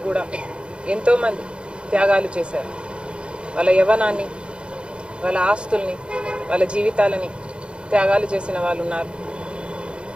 కూడా ఎంతోమంది త్యాగాలు చేశారు. వాళ్ళ యవ్వనాన్ని, వాళ్ళ ఆస్తుల్ని, వాళ్ళ జీవితాలని త్యాగాలు చేసిన వాళ్ళు ఉన్నారు.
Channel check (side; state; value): left; late; 0.055 ms